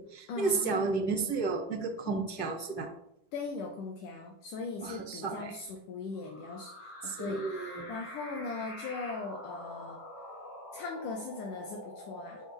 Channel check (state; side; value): late; right; 10 ms